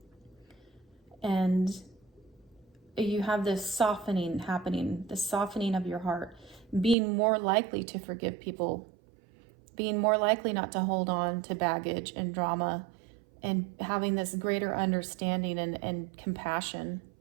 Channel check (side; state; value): left; drops out; at 7.0 s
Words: And you have this softening happening, the softening of your heart, being more likely to forgive people, being more likely not to hold on to baggage and drama, and having this greater understanding and compassion